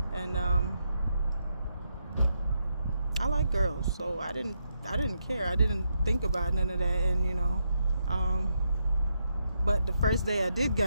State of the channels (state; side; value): inverted; both; correlation -0.81